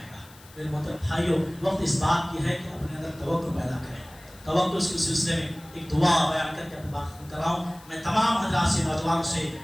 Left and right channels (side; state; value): left; noise; hiss, 23 dB below the sound